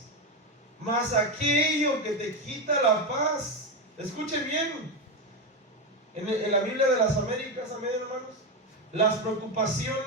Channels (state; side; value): normal; both; correlation 0.12